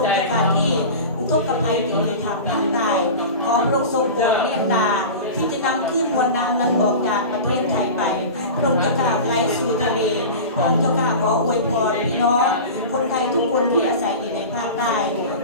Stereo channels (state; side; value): inverted; both; correlation -0.31